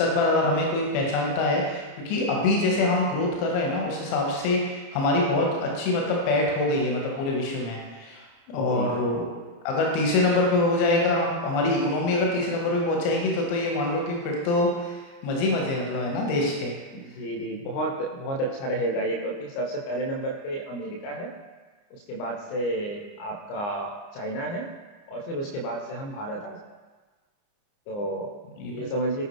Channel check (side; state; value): right; late; 29 ms